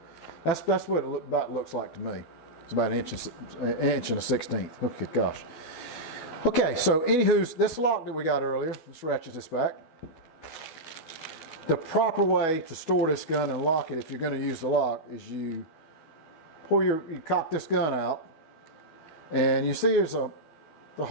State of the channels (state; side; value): late; right; 12 ms